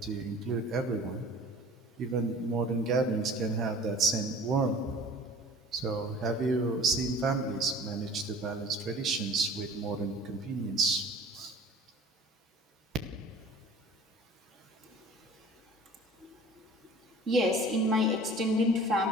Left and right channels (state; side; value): normal; both; correlation 0.45